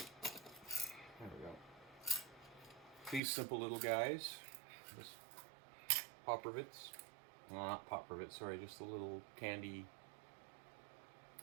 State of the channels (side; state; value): left; drops out; at 3.2 s